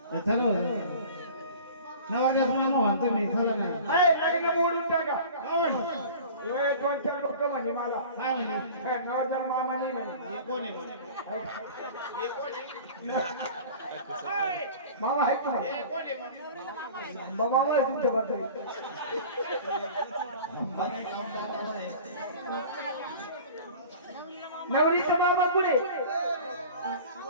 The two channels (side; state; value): both; inverted; correlation -0.42